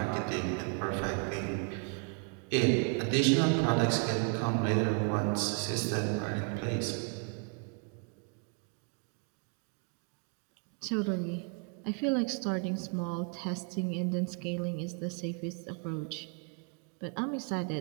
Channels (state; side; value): quieter; left; 39.1 dB